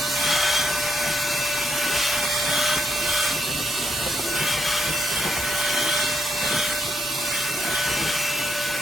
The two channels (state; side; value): normal; both; correlation 0.78